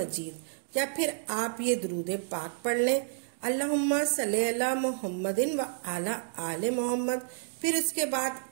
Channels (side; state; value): left; silent; digital silence